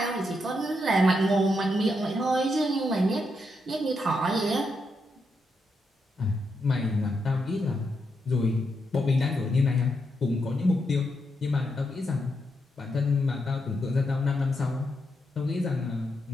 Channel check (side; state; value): both; normal; correlation 0.82